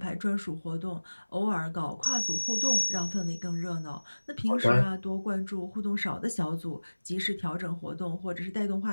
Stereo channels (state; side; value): inverted; both; correlation -1.00